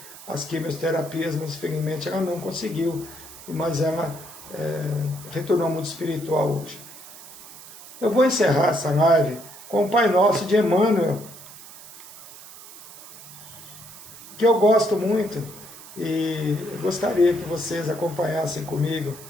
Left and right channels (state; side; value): noise; right; hiss, 17 dB below the sound